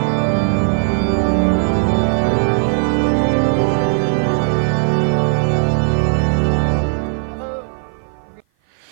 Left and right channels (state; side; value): silent; left; 56 dB below the other